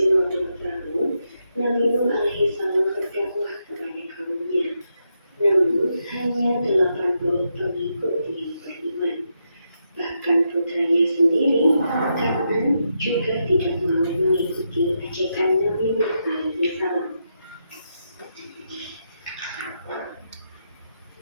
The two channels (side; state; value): both; inverted; correlation -0.83